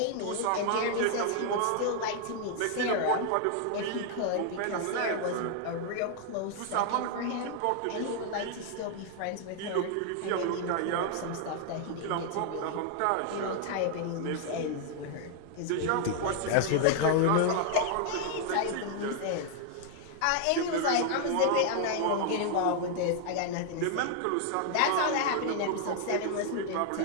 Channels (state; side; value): different; both; correlation 0.00